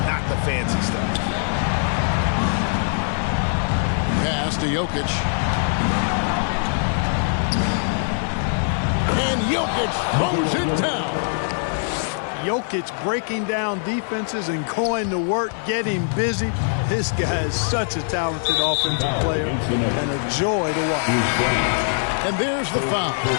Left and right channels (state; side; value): silent; right; 55 dB below the other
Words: not the fancy stuff. Pass to Jokic. And Jokic throws it down. Jokic breaking down defenses and going to work, getting busy. This guy is such a talented offensive player and a joy to watch. And there's the foul.